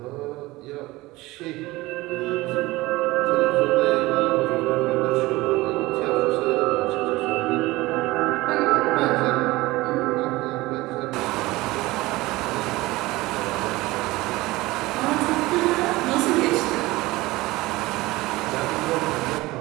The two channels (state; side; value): quieter; left; 19.9 dB